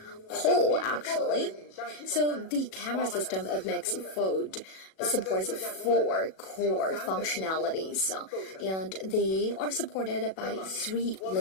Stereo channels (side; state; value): right; late; 37 ms